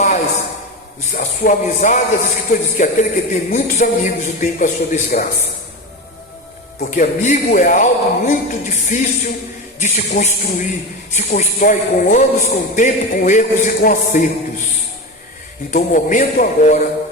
a sua amizade, as escrituras dizem que aquele que tem muitos amigos o tem para a sua desgraça. Porque amigo é algo muito difícil de se construir. Se constrói com anos, com tempo, com erros e com acertos. Então o momento agora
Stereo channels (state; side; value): normal; both; correlation 0.22